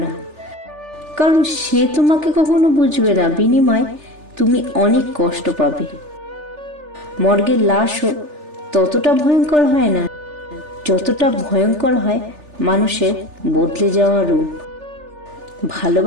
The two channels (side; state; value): left; late; 3.4 ms